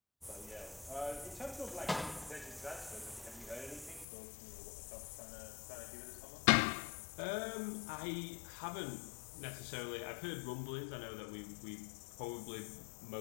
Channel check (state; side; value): drops out; right; at 4.0 s